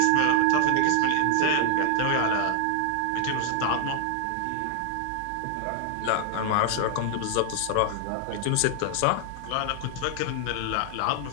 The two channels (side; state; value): both; different; correlation 0.00